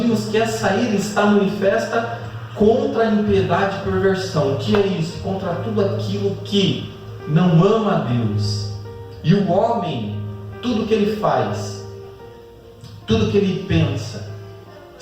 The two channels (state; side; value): identical; both; correlation 1.00